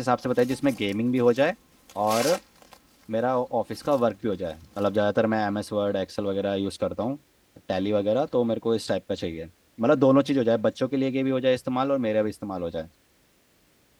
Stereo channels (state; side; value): identical; both; correlation 1.00